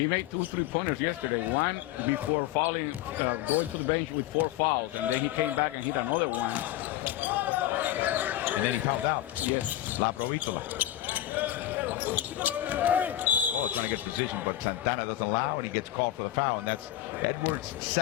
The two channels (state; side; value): quieter; right; 13.5 dB